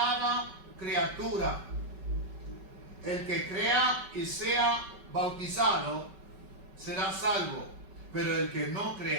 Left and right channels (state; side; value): late; left; 5.2 ms